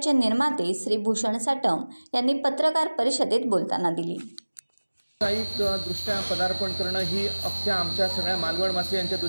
निर्माते श्री भूषण साटम यांनी पत्रकार परिषदेत बोलताना दिली। व्यावसायिक दृष्ट्या पदार्पण करणं ही अख्ख्या आमच्या सगळ्या मालवणवासियांच्या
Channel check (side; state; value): both; inverted; correlation -1.00